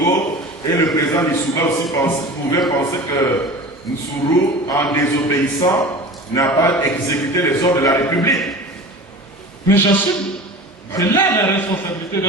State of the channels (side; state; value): both; normal; correlation 0.36